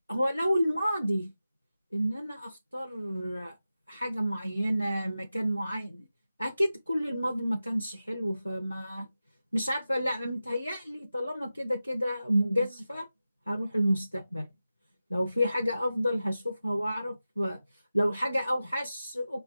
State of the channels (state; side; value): inverted; both; correlation -0.93